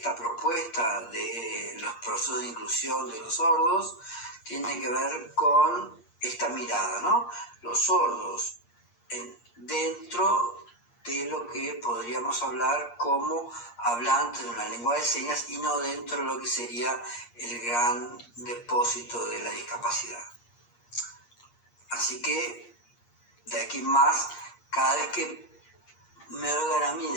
propuesta de los procesos de inclusión de los sordos, tiene que ver con esta mirada, ¿no? Los sordos dentro de lo que podríamos hablar como hablantes de una lengua de señas y no dentro de lo que sería el gran depósito de la discapacidad. Así que, de aquí en más, cada vez que me oigan a mí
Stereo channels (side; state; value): right; late; 8.5 ms